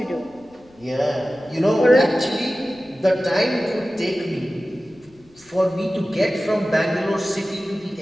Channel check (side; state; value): left; noise; rumble, 29 dB below the sound